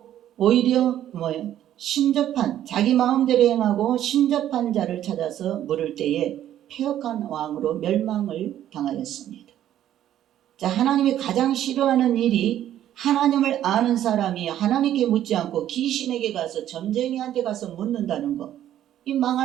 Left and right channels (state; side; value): quieter; left; 11.6 dB